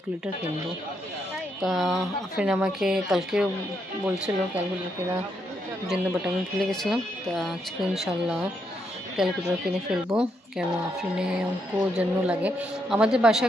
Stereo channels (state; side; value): normal; both; correlation 0.78